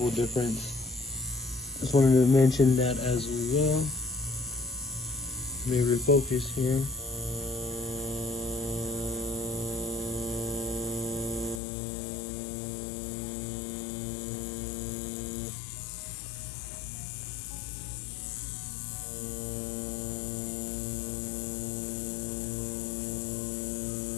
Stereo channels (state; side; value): drops out; right; at 11.6 s